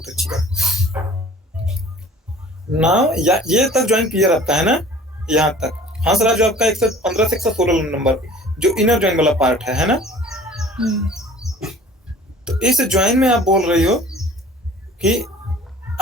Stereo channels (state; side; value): normal; both; correlation 0.47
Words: अच्छी बात। नाउ ये तक ज्वाइन क्लियर आपका है ना, यहाँ तक। हाँ सर, जो आपका 115 से 116 नंबर जो इनर ज्वाइन वाला पार्ट है ना, तो इस ज्वाइन में आप बोल रही हो कि